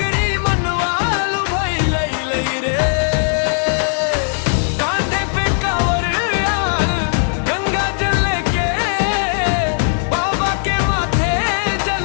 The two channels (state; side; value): silent; right; digital silence